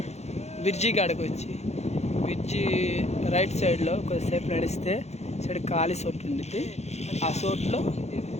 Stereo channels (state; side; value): late; right; 0.32 ms